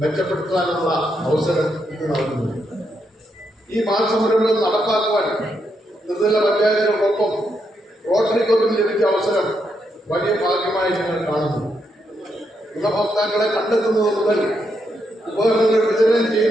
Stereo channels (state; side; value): normal; both; correlation 0.80